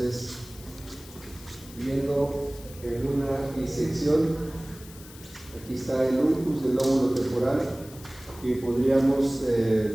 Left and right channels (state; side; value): noise; left; hiss, 19 dB below the sound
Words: viendo en una disección, aquí está el ulcus del lóbulo temporal, que podríamos